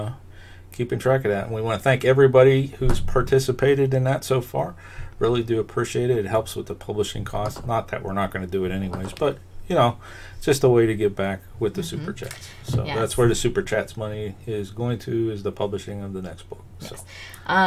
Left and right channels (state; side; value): identical; both; correlation 1.00